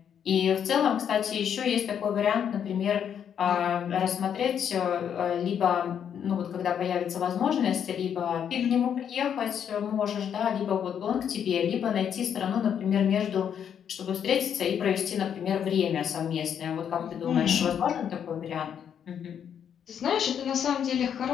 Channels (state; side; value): quieter; right; 8.5 dB